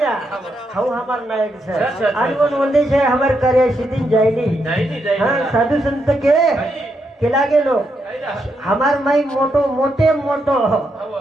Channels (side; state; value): both; normal; correlation 0.80